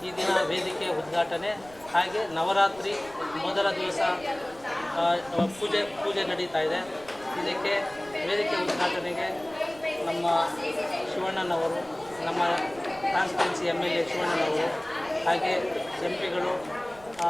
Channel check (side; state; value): right; noise; rumble, 22 dB below the sound